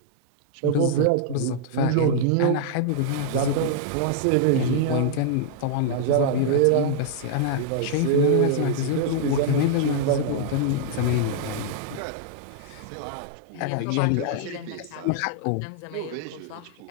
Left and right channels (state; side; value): different; both; correlation -0.01